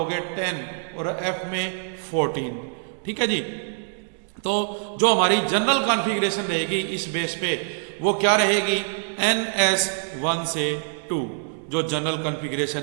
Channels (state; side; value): silent; left; digital silence